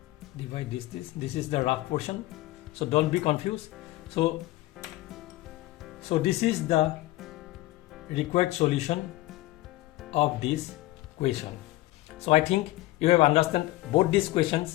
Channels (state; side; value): quieter; right; 17.9 dB